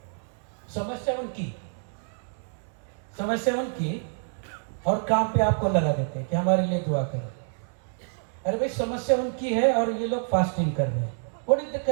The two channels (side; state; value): left; silent; digital silence